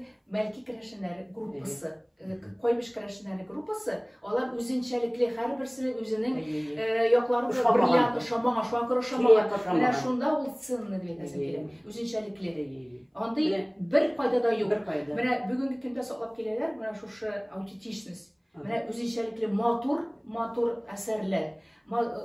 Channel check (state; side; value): identical; both; correlation 1.00